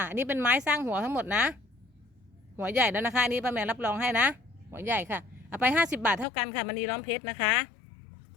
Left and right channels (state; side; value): drops out; right; at 6.2 s